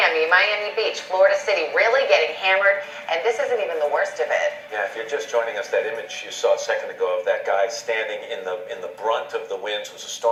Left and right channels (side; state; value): both; identical; correlation 1.00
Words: Beach, Florida City, really getting hammered, and this isn't even the worst of it. Yeah, if you're just joining us, that image you saw a second ago of that guy standing in the brunt of the winds was a